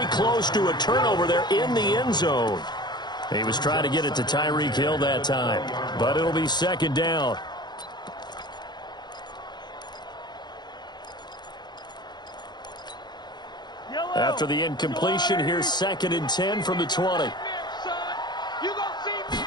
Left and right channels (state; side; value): late; right; 0.21 ms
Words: close to a turnover there in the end zone. He was trying to get it to Tyreek Hill that time, but it'll be second down. After the incompletion, here's 2nd and 10 from the 20.